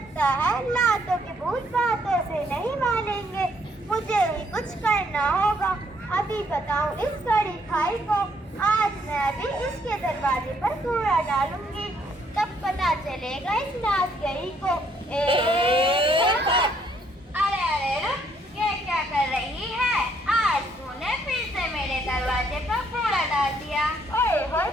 है लातों के भूत बातों से नहीं मानेंगे, मुझे ही कुछ करना होगा। अभी बताऊं इस कड़ी खाई को, आज मैं भी इसके दरवाजे पर कूड़ा डालूंगी, तब पता चलेगा इस नाच गई को। अरे अरे रुक, ये क्या कर रही है? आज तूने फिर से मेरे दरवाजे पर कूड़ा डाल दिया। ओए होए,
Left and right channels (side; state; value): both; normal; correlation 0.68